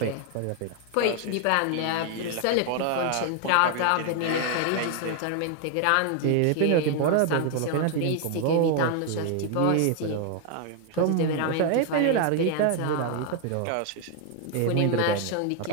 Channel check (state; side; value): different; both; correlation 0.00